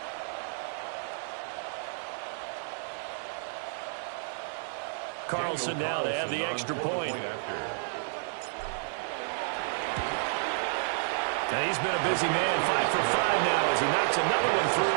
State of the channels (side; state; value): left; silent; 57 dB below the other